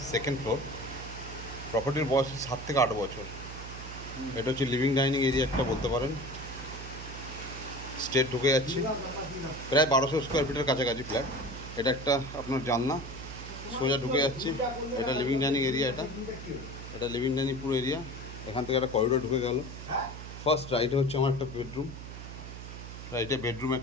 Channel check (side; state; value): right; noise; hum, 11 dB below the sound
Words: second floor. প্রপার্টির বয়স 7 থেকে 8 বছর। এটা হচ্ছে লিভিং ডাইনিং এরিয়া একটা বলতে পারেন। স্টেট ঢুকে যাচ্ছি, প্রায় 1200 স্কোয়ার ফিটের কাছাকাছি ফ্ল্যাট। এটা একটা আপনার জানলা, সোজা ঢুকে যাচ্ছি। এটা লিভিং ডাইনিং এরিয়া, এটা লিভিং ডাইনিং পুরো এরিয়া। এখান থেকে একটা করিডোর ঢুকে গেল। ফার্স্ট রাইটে হচ্ছে আমার একটা বেডরুম, রাইটে বেডরুম